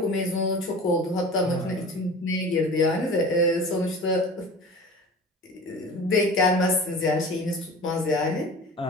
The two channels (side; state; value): both; normal; correlation 0.38